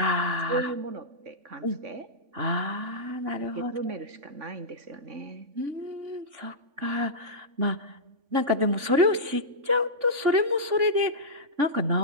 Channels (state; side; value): late; left; 3.5 ms